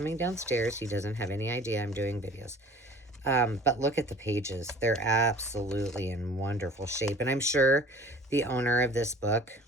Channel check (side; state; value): both; normal; correlation 0.47